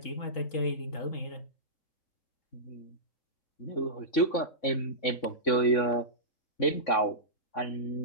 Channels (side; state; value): right; late; 3.6 ms